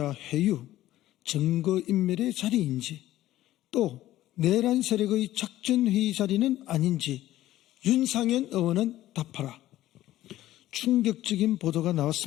회유, 증거인멸의 자리인지, 또 내란 세력의 작전회의 자리는 아닌지 윤상현 의원은 답하라. 충격적인 보도가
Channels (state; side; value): quieter; right; 14.6 dB